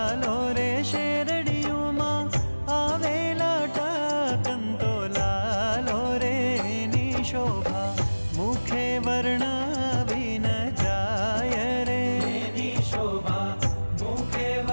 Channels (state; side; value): inverted; both; correlation -1.00